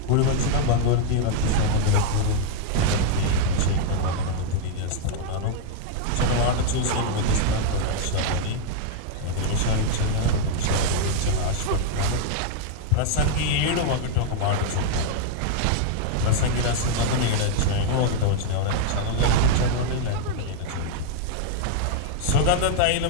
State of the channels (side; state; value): both; different; correlation 0.00